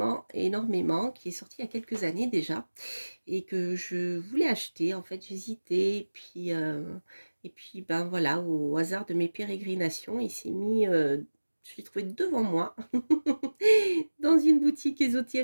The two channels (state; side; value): inverted; both; correlation -1.00